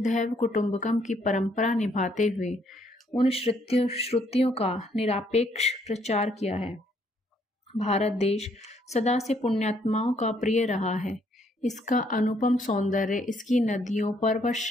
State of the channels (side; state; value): both; normal; correlation 0.69